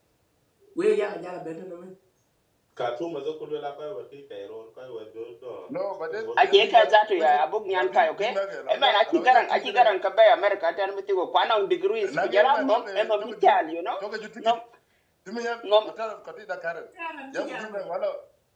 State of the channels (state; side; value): identical; both; correlation 1.00